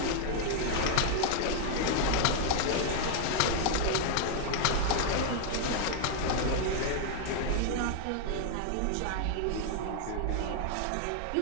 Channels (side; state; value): both; different; correlation 0.00